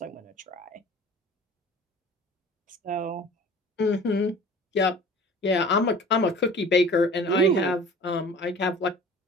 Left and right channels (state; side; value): normal; both; correlation 0.44